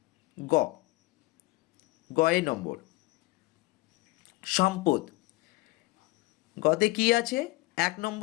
গয়ে নম্বর, সম্পদ। গতে কি আছে? 1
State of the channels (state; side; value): quieter; right; 22.1 dB